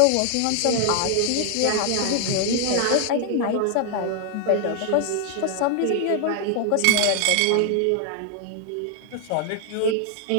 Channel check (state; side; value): different; both; correlation 0.00